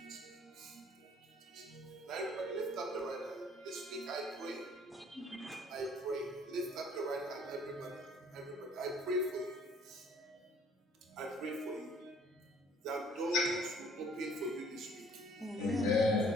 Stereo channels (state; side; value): normal; both; correlation 0.58